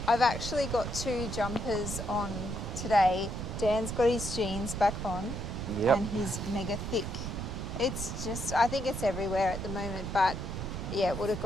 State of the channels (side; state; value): right; noise; rumble, 5 dB below the sound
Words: I've actually got 2 jumpers on today. Dan's got his jeans back on and he's mega thick. It's just, I think it's everywhere at the moment, but yeah, it would have